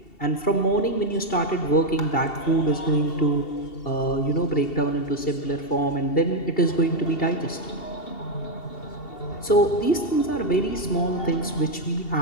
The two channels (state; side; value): late; right; 2.7 ms